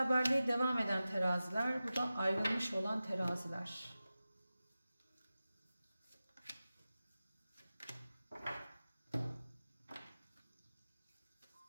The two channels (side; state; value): both; inverted; correlation -0.95